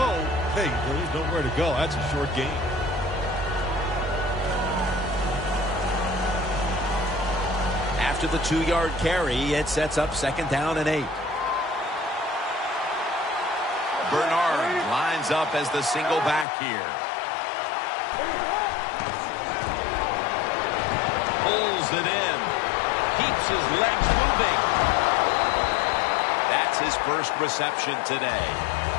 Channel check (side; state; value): right; drops out; at 16.4 s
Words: Hey, there's nowhere to go. That's a short game. After the 2-yard carry, it sets up 2nd down and 8. Bernard lines up as the single back here. Pulls it in. Keeps his legs moving. That's his first reception today.